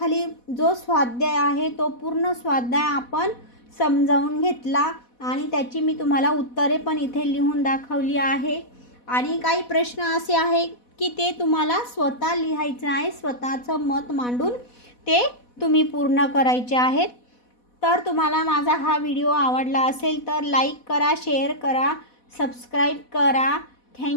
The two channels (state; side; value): late; right; 4.1 ms